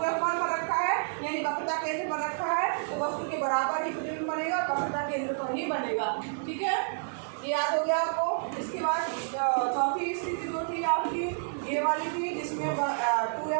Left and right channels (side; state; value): left; silent; 58 dB below the other